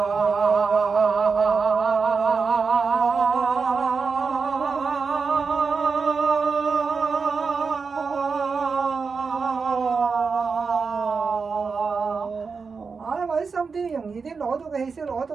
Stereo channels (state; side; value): quieter; left; 5.0 dB